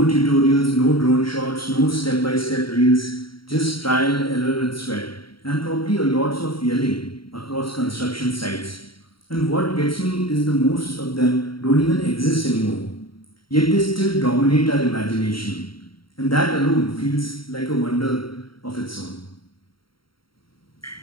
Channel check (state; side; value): late; right; 0.74 ms